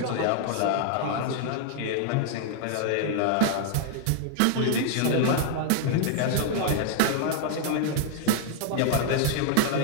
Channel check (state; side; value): different; both; correlation 0.00